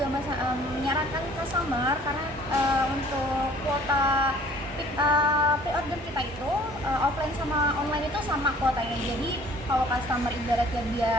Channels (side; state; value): both; normal; correlation 0.53